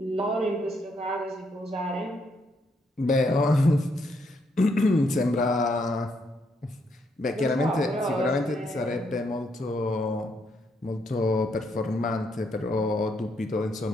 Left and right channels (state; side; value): normal; both; correlation 0.75